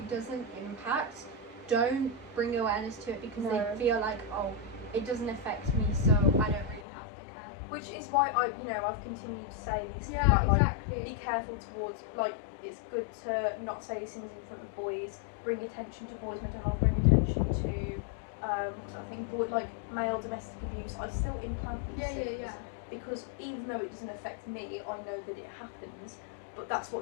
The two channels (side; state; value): right; drops out; at 6.9 s